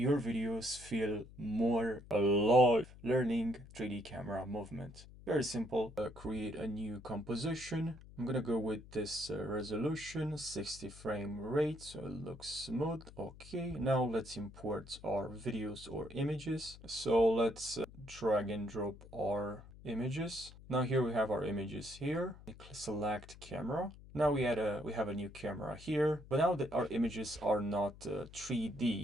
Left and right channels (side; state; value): left; noise; hum, 18 dB below the sound